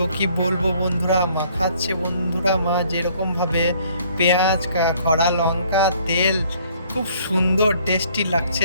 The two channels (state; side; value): inverted; both; correlation -0.61